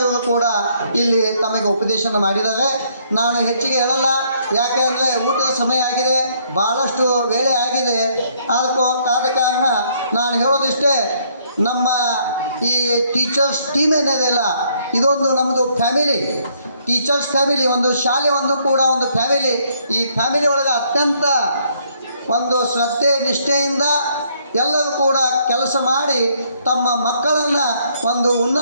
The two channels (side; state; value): both; inverted; correlation -0.68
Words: ಇವರು ಕೂಡ ಇಲ್ಲಿ ತಮಗೆ ಉಪದೇಶನ ಮಾಡಿದ್ದಾರೆ. ನಾನು ಹೆಚ್ಚಿಗೆ ಹೇಳಲ್ಲ, ಯಾಕೆ ಅಂದರೆ ಊಟದ ಸಮಯ ಆಗಿದೆ, ಭಾಳಷ್ಟು ವೇಳೆ ಆಗಿದೆ. ಆದ ಕಾರಣ ನಾನು ಹೇಳೋದಿಷ್ಟೇ, ನಮ್ಮ ಈ ಟೀಚರ್ಸ್ ಟೀಮ್ ಏನಿದೆಯಲ್ಲ, ಇದೊಂದು ನಮ್ಮದು ಫ್ಯಾಮಿಲಿ, ಟೀಚರ್ಸ್ ಫ್ಯಾಮಿಲಿ, ಒಂದು ಶಾಲೆ ಒಂದು ಕೂಡ ಒಂದು ಫ್ಯಾಮಿಲಿ. ಈ ಫ್ಯಾಮಿಲಿ ಒಳಗೆ ಅತ್ಯಂತ ಒಂದು ಶ್ರದ್ಧೆ ನಿಷ್ಠೆಯಿಂದ ಎಲ್ಲರೂ ಕೂಡ ಕೆಲಸ ಮಾಡಿ ತಮ್ಮ ಮಕ್ಕಳನ್ನು ಒಂದು